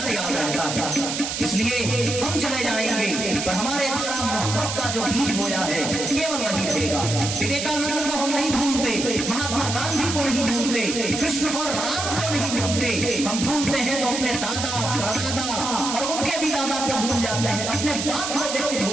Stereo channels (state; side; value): noise; right; hiss, 4 dB below the sound